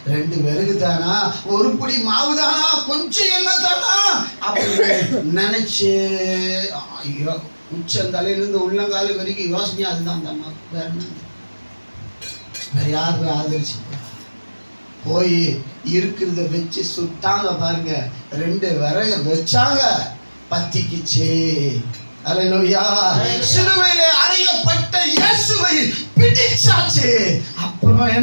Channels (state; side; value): inverted; both; correlation -1.00